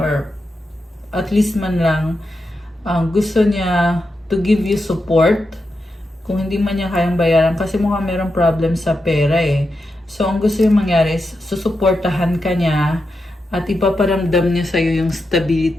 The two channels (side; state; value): both; normal; correlation 0.87